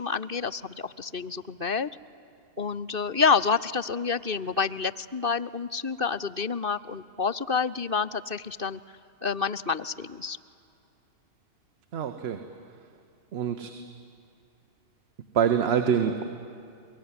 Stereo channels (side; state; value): left; late; 2.6 ms